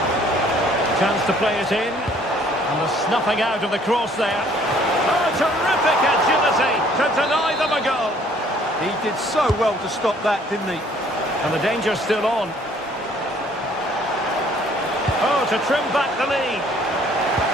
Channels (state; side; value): normal; both; correlation 0.59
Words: Chance to play it in. And the snuffing out of the cross there. Oh, terrific agility to deny them a goal. He did so well to stop that, didn't he? And the danger's still on. Oh, to trim back the lead.